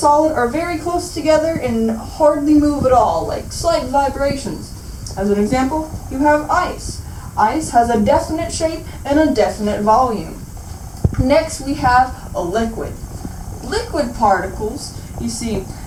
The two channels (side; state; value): both; identical; correlation 1.00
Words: are very close together and hardly move at all, like slight vibrations. As an example, you have ice. Ice has a definite shape and a definite volume. Next, we have a liquid. Liquid particles, you see,